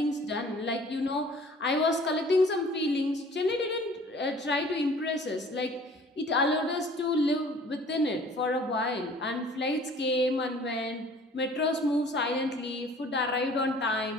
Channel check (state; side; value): normal; both; correlation 0.51